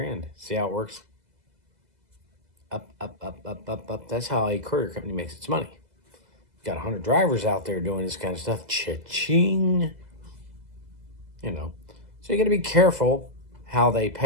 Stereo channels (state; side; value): late; left; 2.0 ms